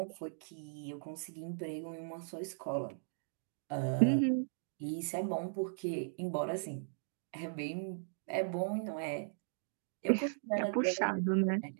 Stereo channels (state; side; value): silent; left; digital silence